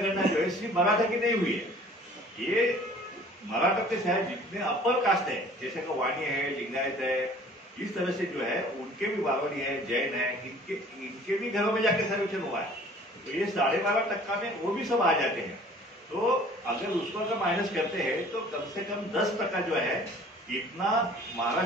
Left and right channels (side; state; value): both; normal; correlation 0.50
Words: जो है सिर्फ मराठा की नहीं हुई है, ये मराठा के शायद जितने अपर कास्ट है जैसे कि वाणी है, लिंगायत है, इस तरह से जो है उनके भी बावड़ी है, जैन है, इनके भी घरों में जाके सर्वेक्षण हुआ है। तो ये 12.5% में वो भी सब आ जाते हैं। तो अगर उसको अगर माइनस करते हैं तो कम से कम 10% जो है इतना